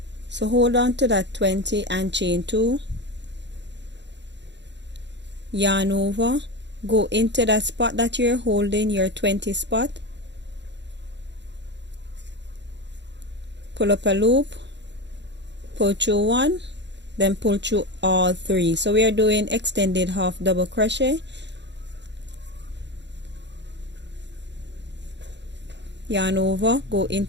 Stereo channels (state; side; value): late; left; 0.52 ms